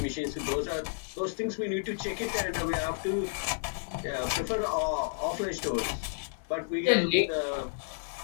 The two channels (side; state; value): right; silent; digital silence